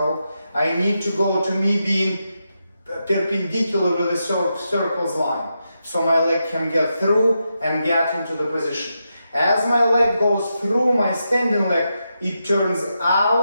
I need to go to me being perpendicular with the circle's line. So my leg can get through and get into the position. As my leg goes through my standing leg, it turns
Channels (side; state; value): both; inverted; correlation -0.86